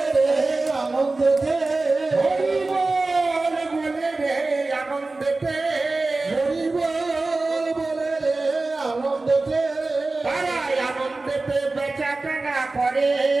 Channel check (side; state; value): left; quieter; 3.4 dB